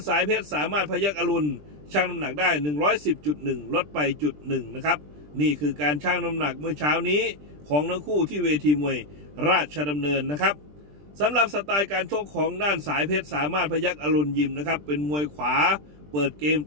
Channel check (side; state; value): left; late; 20 ms